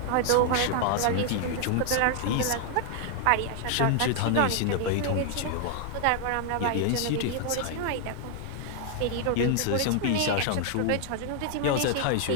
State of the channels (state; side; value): different; both; correlation 0.00